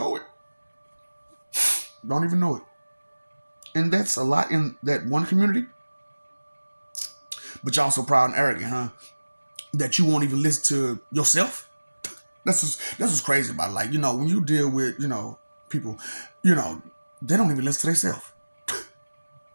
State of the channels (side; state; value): both; inverted; correlation -1.00